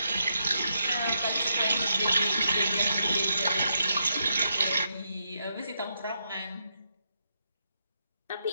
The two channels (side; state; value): both; inverted; correlation -0.81